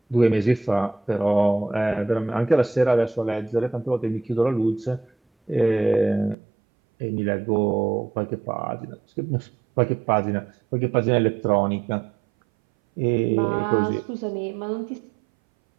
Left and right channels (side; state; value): left; drops out; at 6.4 s